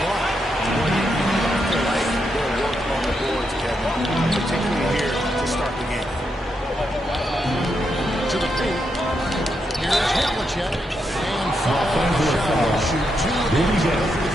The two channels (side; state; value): both; normal; correlation 0.82